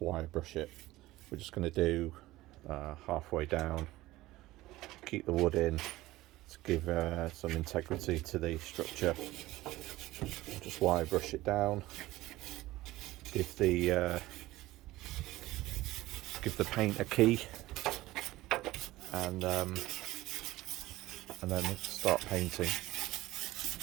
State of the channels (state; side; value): quieter; left; 17.6 dB